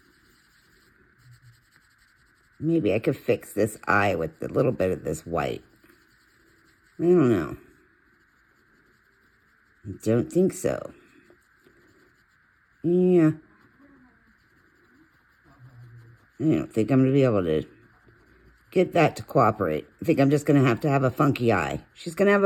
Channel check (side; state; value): both; identical; correlation 1.00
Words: Maybe I could fix this eye with a little bit of this white. I don't know. I don't think so. Yeah. I don't think I'm going to be able to get that to cooperate. I think I'm just going to have a funky eye. She's going to have